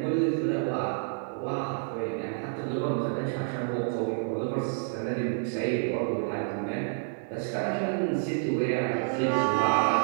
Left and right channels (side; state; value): left; silent; digital silence